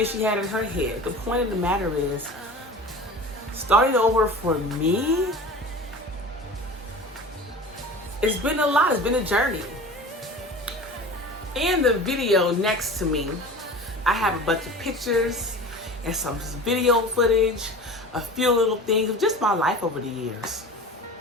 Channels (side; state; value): both; normal; correlation 0.37